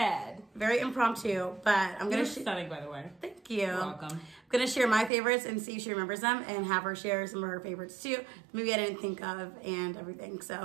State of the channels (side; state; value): left; drops out; at 5.1 s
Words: Very impromptu, but I'm going to... You're stunning, by the way. Thank you. You're welcome. I'm going to share my favorites and see if she remembers them and have her share some of her favorites too. Maybe I didn't think of and everything,